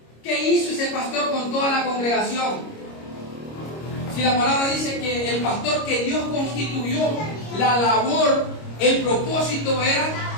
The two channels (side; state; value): right; late; 26 ms